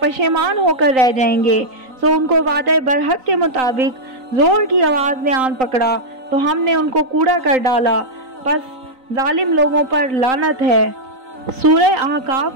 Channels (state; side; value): late; left; 3.9 ms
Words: होकर रह जाएंगे। सो उनको वादे बरहक के मुताबिक जोर की आवाज़ ने आन पकड़ा तो हमने उनको कूड़ा कर डाला। बस जालिम लोगों पर लानत है। सूरह